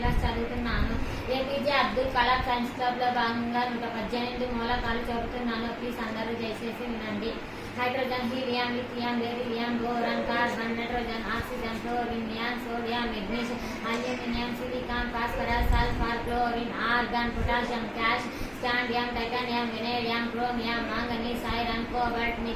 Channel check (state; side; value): identical; both; correlation 1.00